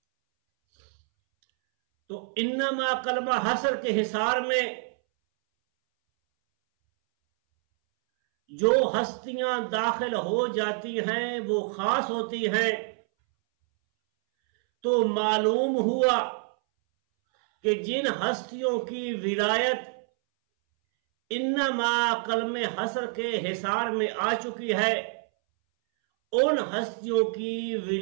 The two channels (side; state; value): left; silent; 60 dB below the other